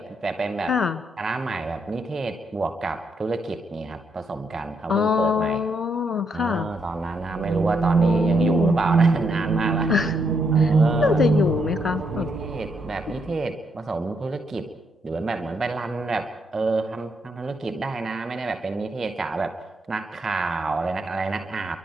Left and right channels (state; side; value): normal; both; correlation 0.77